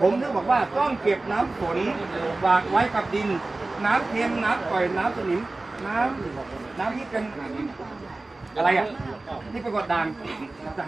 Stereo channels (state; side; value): quieter; left; 3.1 dB